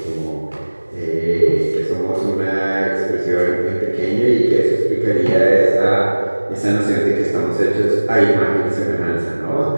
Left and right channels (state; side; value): inverted; both; correlation -1.00